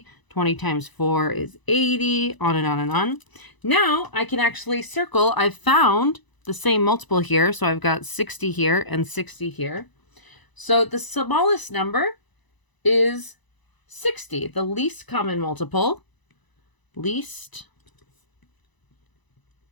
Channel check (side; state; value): right; late; 1.0 ms